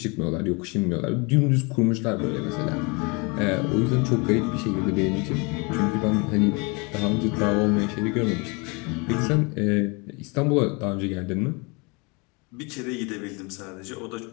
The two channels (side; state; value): right; quieter; 29.8 dB